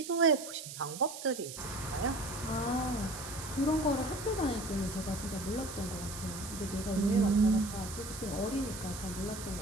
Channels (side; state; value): right; noise; hiss, 10 dB below the sound